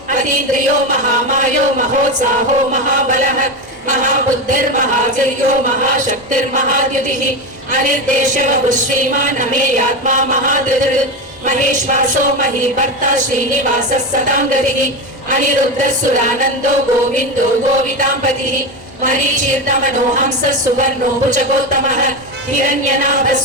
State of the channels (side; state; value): both; normal; correlation 0.17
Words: अतीन्द्रियो महामायो महोत्साहो महाबलः महाबुद्धिर्महावीर्यो महाशक्तिर्महाद्युतिः अनिर्देशवः श्रीमान् अमेयात्मा महाधृतिः महेश्वासो महीभर्ता श्रीनिवासः सतां गतिः अनिरुद्धः सुरानन्दो गोविन्दो गोविताम्पतिः मरीचीर्णमनो हंसः सुवर्णो भुजगोत्तमः हिरण्यनाभः